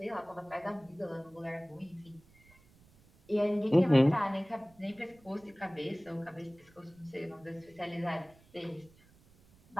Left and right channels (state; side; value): noise; right; rumble, 28 dB below the sound